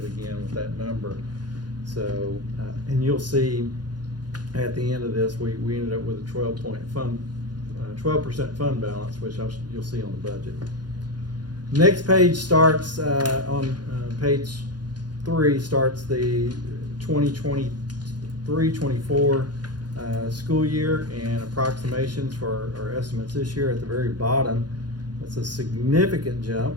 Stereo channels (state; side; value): late; left; 0.70 ms